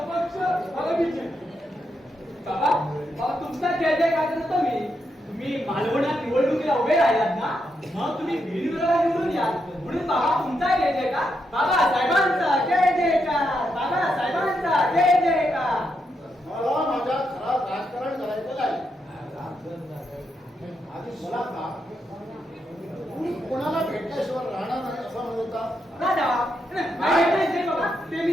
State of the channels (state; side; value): normal; both; correlation 0.82